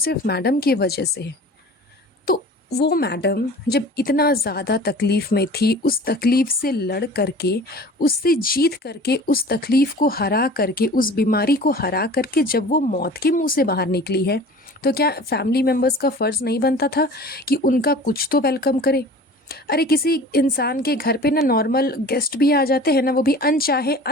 मैडम की वजह से है। तो वो मैडम जब इतना ज़्यादा तकलीफ़ में थी, उस तकलीफ़ से लड़ करके, उससे जीत करके, उस तकलीफ़ को हरा करके, उस बीमारी को हरा करके जब वो मौत के मुंह से बाहर निकली है, तो क्या फैमिली मेम्बर्स का फ़र्ज़ नहीं बनता था कि उनका कुछ तो वेलकम करे? अरे किसी इंसान के घर पे ना नॉर्मल गेस्ट भी आ जाते हैं ना, वो भी अनचाहे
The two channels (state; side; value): normal; both; correlation 0.42